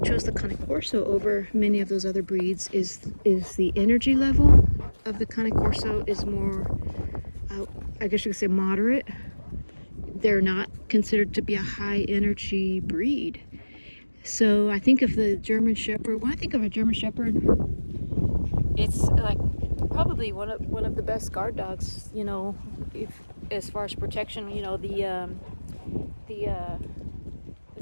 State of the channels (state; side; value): inverted; both; correlation -1.00